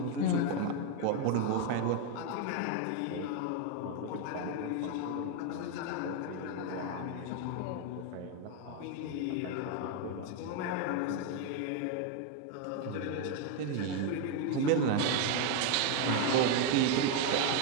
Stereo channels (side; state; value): both; different; correlation 0.01